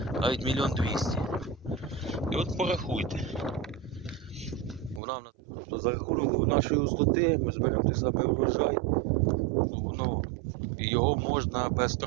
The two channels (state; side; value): drops out; left; at 5.0 s